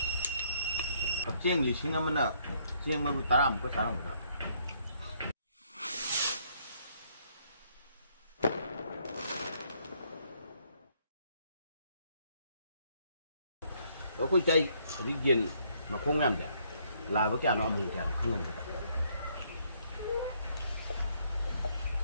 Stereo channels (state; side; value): inverted; both; correlation -0.68